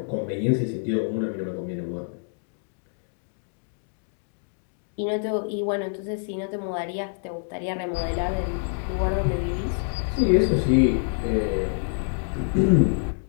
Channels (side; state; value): right; silent; 61 dB below the other